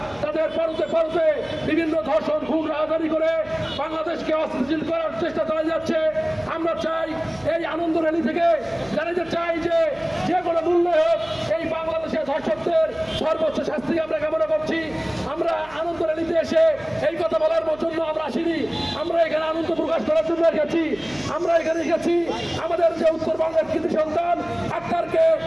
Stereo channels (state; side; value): noise; right; hum, 24 dB below the sound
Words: তাদের পরতে পরতে বিভিন্ন ধর্ষণ খুন রাজধানী করে বাংলাদেশকে অস্থিতিশীল করার চেষ্টা চালিয়ে যাচ্ছে। আমরা চাই এই আনন্দ র্যালি থেকে জানাতে চাই যে কোনো মূল্যে হোক এই বাংলাদেশের ধর্ষকদের সর্বোচ্চ শাস্তি আমরা কামনা করছি। আমরা আনন্দ র্যালিতে এসে এই কথা বলার জন্য আমরা আসিনি, আমরা এখানে আনন্দ প্রকাশ করার জন্য এসেছি। আমরা এখানে এসেছি আমাদের যে উত্তরবঙ্গের কৃতি সন্তান আক্তারকে